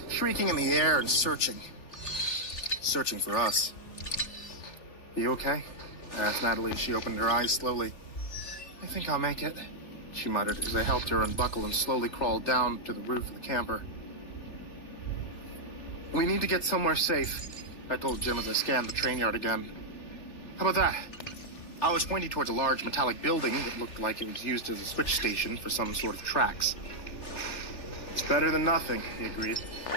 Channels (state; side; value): late; right; 3.4 ms